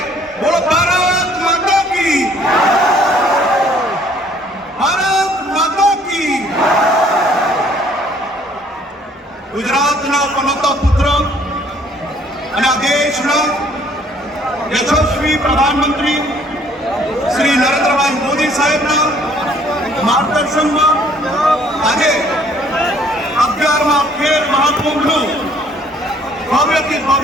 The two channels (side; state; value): both; normal; correlation 0.60